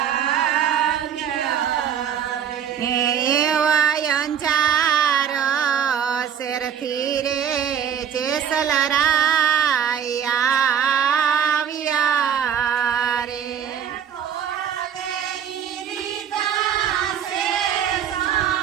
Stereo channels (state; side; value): quieter; left; 8.5 dB